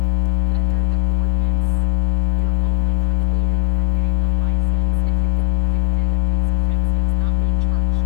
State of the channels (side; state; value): right; quieter; 30.4 dB